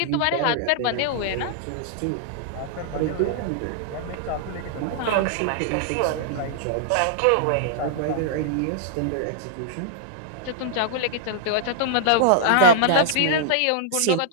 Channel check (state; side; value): different; both; correlation -0.01